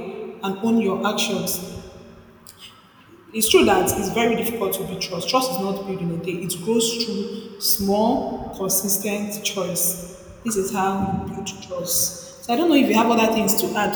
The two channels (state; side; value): identical; both; correlation 1.00